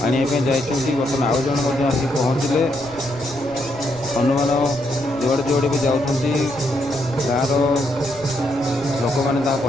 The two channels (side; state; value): right; noise; rumble, 18 dB below the sound